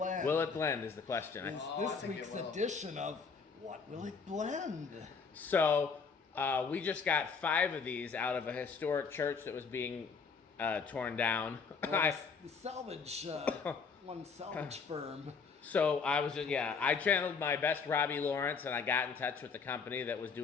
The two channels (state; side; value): quieter; right; 5.4 dB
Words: Will it blend is the question. Is this week's edition of What Will It Blend? So we just got 5 of these out of a historic church that was being torn down. The salvage, one salvage firm. So I was I channeled my best Robbie Lawrence, and I got in touch with the company that was